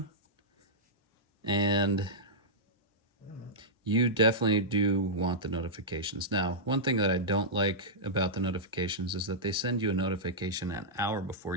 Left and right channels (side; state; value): both; normal; correlation -0.11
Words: And you definitely do want the notifications. Now, one thing that I don't like about the notifications is that they send you a notification an hour before